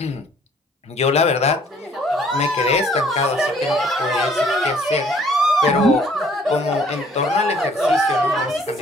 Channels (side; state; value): both; normal; correlation 0.59